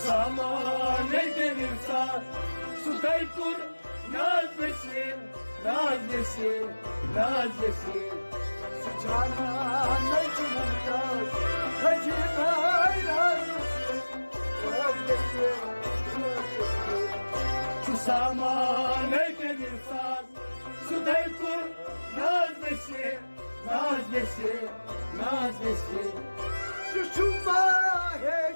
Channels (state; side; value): inverted; both; correlation -1.00